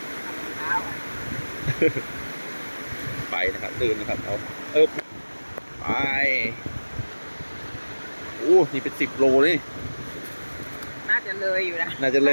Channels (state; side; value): inverted; both; correlation -1.00